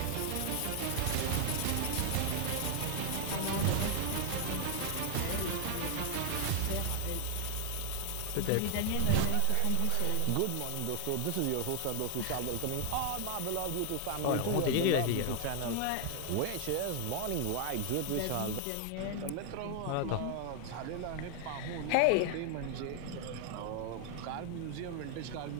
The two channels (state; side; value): different; both; correlation 0.00